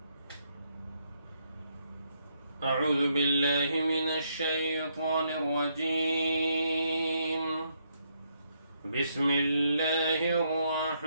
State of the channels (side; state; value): both; inverted; correlation -0.75